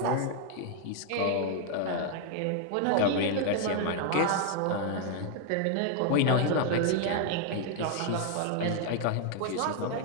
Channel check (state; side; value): different; both; correlation 0.00